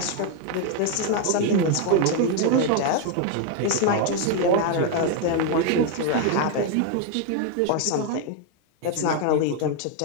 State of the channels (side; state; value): both; different; correlation 0.01